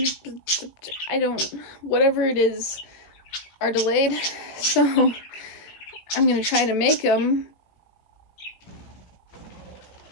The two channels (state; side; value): late; right; 18 ms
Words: whatever it is, are delayed, so I'm gonna try to make them.